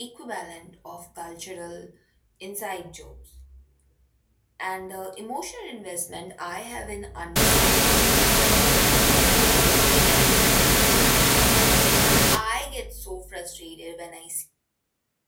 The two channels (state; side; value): identical; both; correlation 1.00